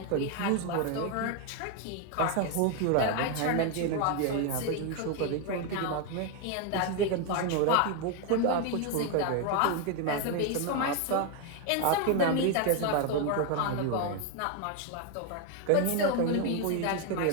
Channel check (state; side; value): different; both; correlation 0.01